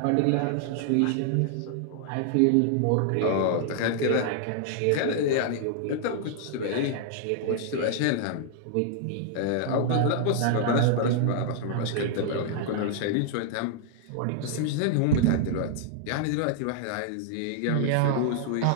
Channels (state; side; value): different; both; correlation -0.01